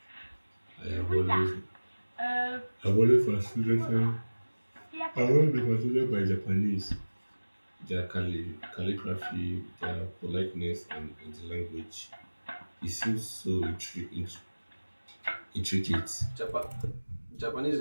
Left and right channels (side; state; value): both; inverted; correlation -1.00